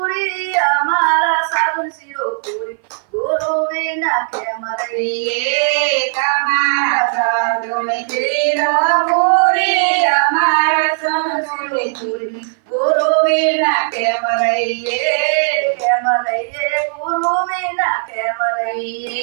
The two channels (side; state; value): left; silent; 58 dB below the other